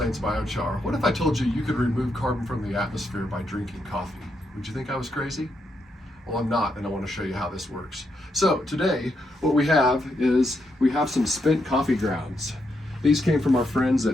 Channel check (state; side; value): normal; both; correlation 0.81